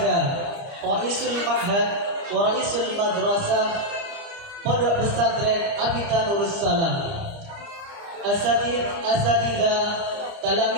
Raisul Ma'had wa Raisul Madrasah Pondok Pesantren Abita Nurus Salam, Asatidzah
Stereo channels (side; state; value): left; late; 30 ms